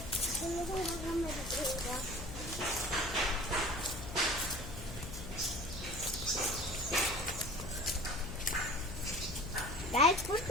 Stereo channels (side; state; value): left; noise; hum, 10 dB below the sound